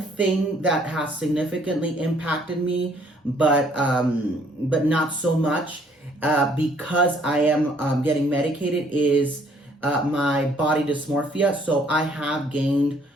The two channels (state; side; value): normal; both; correlation 0.63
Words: thing that has significantly impacted me, but not so much, because I am getting medicated, is my body dysmorphia. So I have gained